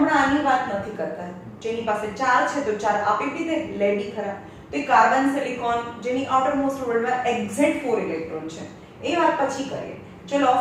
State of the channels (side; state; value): both; identical; correlation 1.00